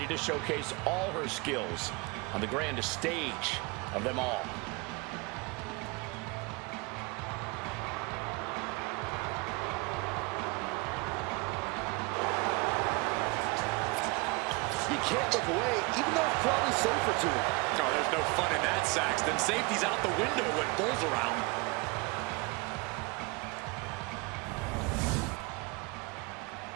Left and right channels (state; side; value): quieter; left; 26.9 dB